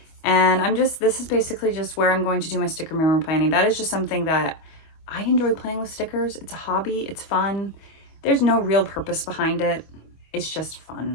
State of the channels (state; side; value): late; right; 25 ms